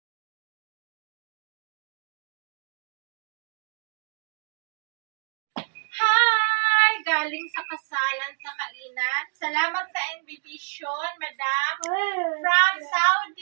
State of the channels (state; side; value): silent; left; 60 dB below the other